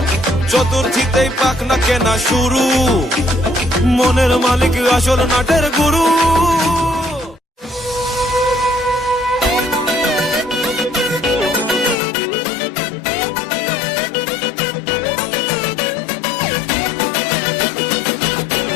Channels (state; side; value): drops out; right; at 12.0 s